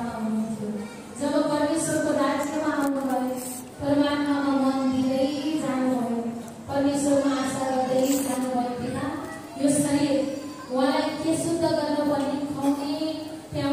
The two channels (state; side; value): identical; both; correlation 1.00